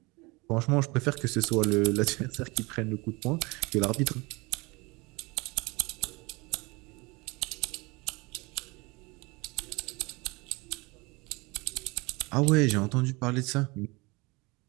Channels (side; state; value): left; quieter; 25.3 dB